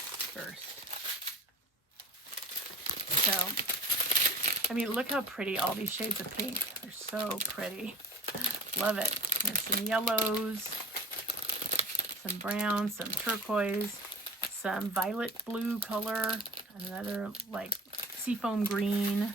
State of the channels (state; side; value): normal; both; correlation 0.42